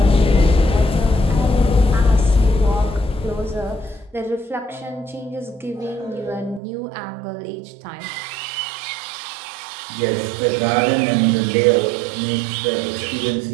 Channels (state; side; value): drops out; left; at 6.6 s